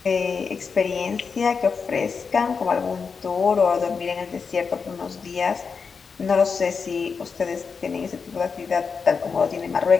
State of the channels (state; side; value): quieter; right; 5.5 dB